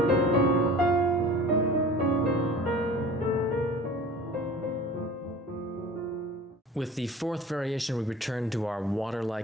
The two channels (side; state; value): both; normal; correlation 0.41